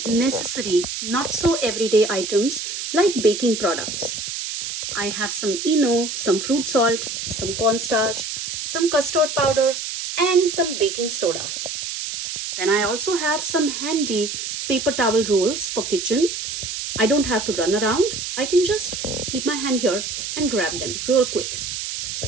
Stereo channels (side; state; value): right; noise; hiss, 5 dB below the sound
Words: necessary, not so everyday items like baking products. I have some Eno, some fruit salt, some cornstarch, some custard powder, and some baking soda. Then I also have some handy paper towel rolls for kitchen. I don't have to run around. I can just keep my hand here and grab them real quick.